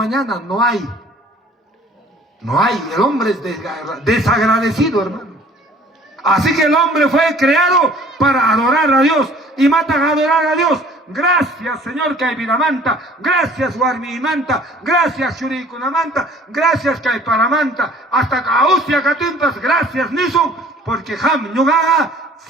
no hay. No hay, el hombre es desagradecido, hermano. Así que el hombre fue creado para adorar a Dios, y matan a adorar a Dios. Gracias, Señor, Kaiviramanta. Gracias, Warmimanta. Gracias, Shurikunamanta. Gracias, Kaiparamanta. Hasta Kausia Katimpas. Gracias, Nisun. Porque Ham Yugaga,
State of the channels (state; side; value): normal; both; correlation 0.52